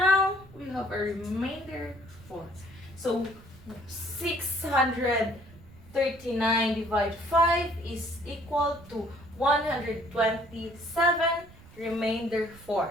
we have a remainder 4. So 639 divided 5 is equal to 127, remainder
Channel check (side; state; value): right; noise; rumble, 22 dB below the sound